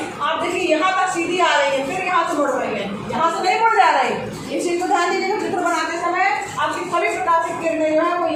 आप देखिए यहाँ तक सीधी आ रही है, फिर यहाँ से मुड़ रही है, यहाँ से नहीं मुड़ जा रही। इस चीज़ को ध्यान दीजिएगा, चित्र बनाते समय आपकी सभी प्रकाशिक किरणें जो है वो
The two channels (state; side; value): identical; both; correlation 1.00